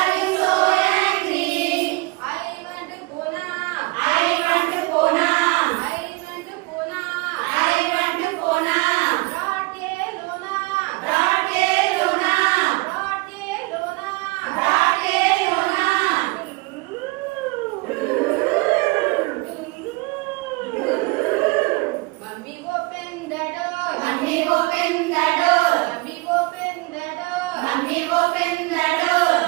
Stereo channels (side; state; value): left; quieter; 25.2 dB